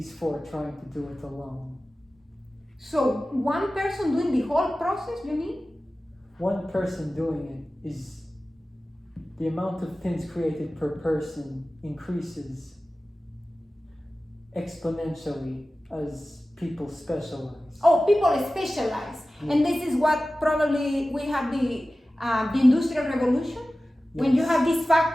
four trying to do it alone. So one person doing the whole process, you mean? One person doing it is the amount of pins created per person increases exponentially as people specialize. Oh, people specialize. Yeah. And this is what probably we have the Industrial Revolution. Yes. When you have these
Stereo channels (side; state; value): both; normal; correlation 0.96